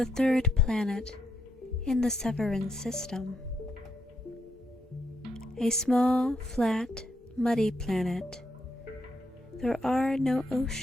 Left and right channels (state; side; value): normal; both; correlation 0.78